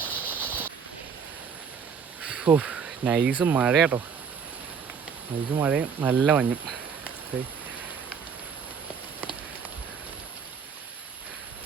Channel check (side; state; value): left; quieter; 6.5 dB